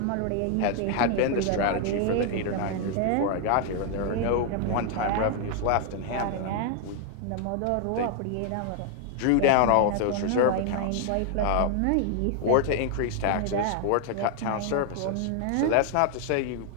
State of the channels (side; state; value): both; different; correlation 0.00